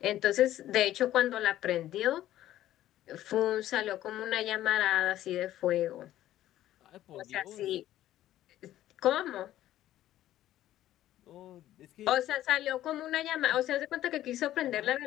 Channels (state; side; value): quieter; right; 13.4 dB